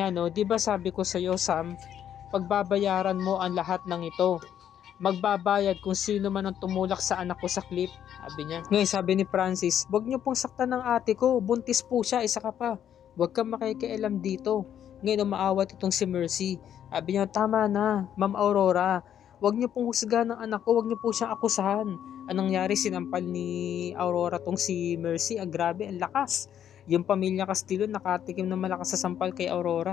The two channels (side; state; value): right; quieter; 9.8 dB